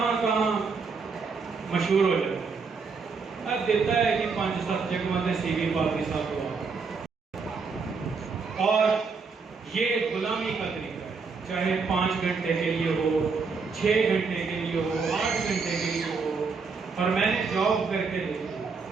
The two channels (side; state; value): left; quieter; 4.9 dB